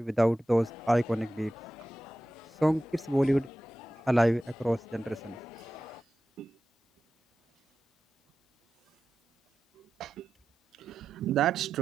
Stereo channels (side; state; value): both; normal; correlation 0.92